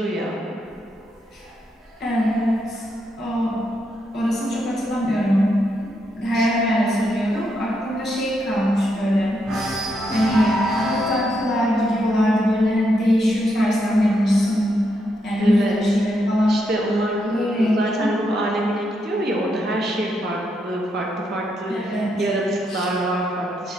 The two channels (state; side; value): normal; both; correlation 0.80